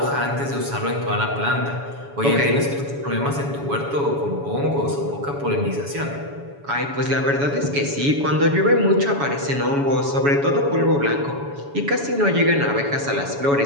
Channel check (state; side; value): late; left; 7.1 ms